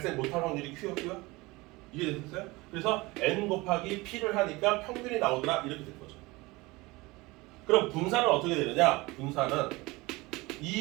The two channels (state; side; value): quieter; left; 22.3 dB